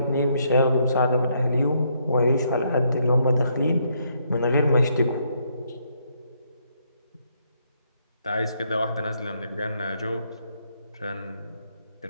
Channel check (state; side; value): inverted; both; correlation -0.73